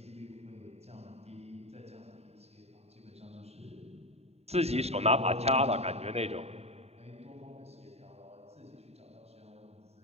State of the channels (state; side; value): late; left; 0.30 ms